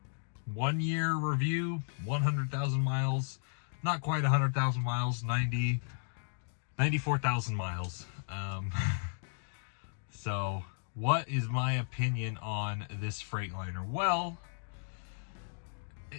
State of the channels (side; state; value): right; silent; digital silence